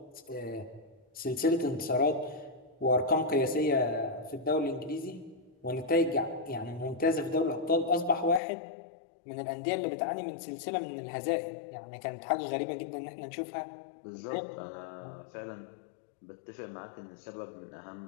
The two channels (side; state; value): right; drops out; at 8.4 s